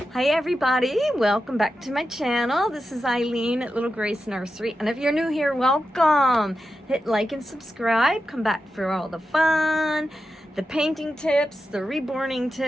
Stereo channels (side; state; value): both; normal; correlation 0.90